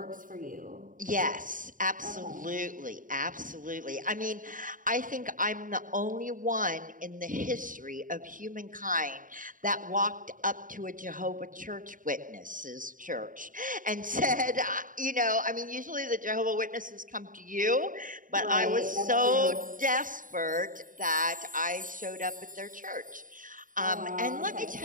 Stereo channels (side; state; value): left; late; 0.39 ms